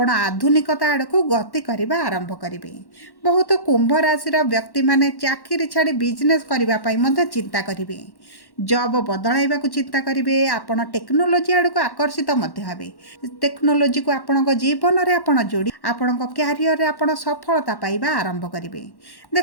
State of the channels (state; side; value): late; right; 1.1 ms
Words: आधुनिकता आड़ को गति करबा आरंभ करिवे। बहुत कुंभ राशि व्यक्ति माने चाकरी छाड़ी बिजनेस करबा पई मध्य चिंता करिवे, जॉब बदलाइबा को चिंता करिवे। आपण टेक्नोलोजी आड़ को आकर्षित मध्य हेबे, टेक्नोलोजी को आपण को जीवन रे आपण जोड़ी आपण को कैरियर रे आपण सफलता पाइबा आरंभ करिवे।